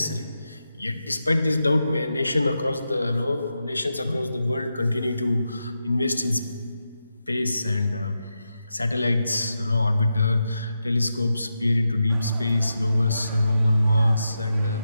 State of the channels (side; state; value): both; inverted; correlation -0.87